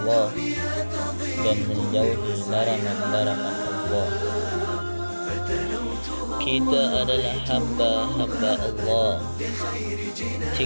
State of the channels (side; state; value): both; inverted; correlation -1.00